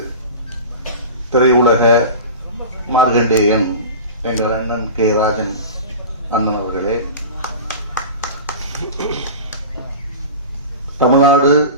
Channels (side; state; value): both; inverted; correlation -0.33